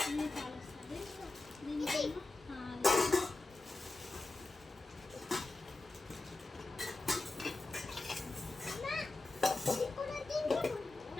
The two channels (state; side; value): quieter; right; 3.2 dB